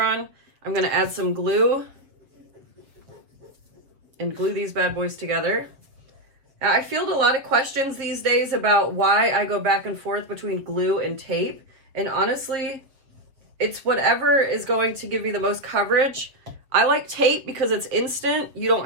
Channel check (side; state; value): left; late; 7.6 ms